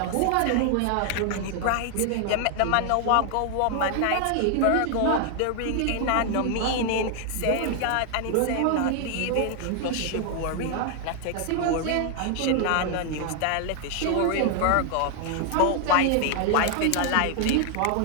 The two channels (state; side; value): different; both; correlation 0.00